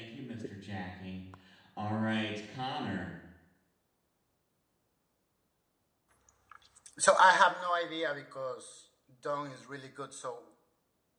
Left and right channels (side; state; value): both; identical; correlation 1.00